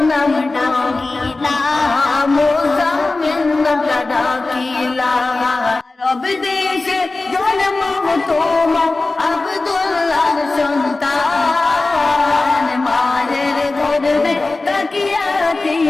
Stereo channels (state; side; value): quieter; right; 3.3 dB